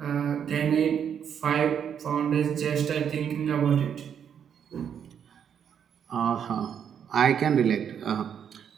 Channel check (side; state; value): left; quieter; 8.2 dB